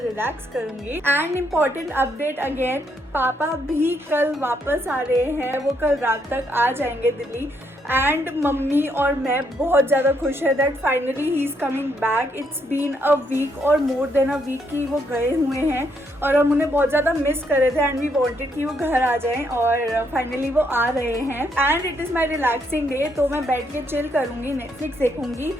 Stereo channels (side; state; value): both; normal; correlation 0.74